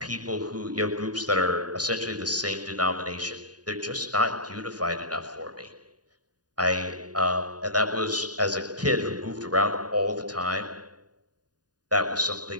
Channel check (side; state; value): left; late; 0.69 ms